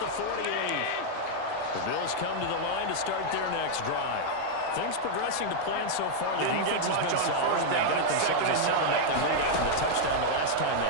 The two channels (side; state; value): both; different; correlation -0.01